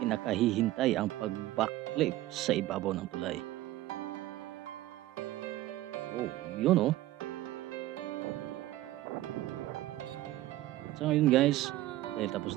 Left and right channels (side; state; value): left; quieter; 15.8 dB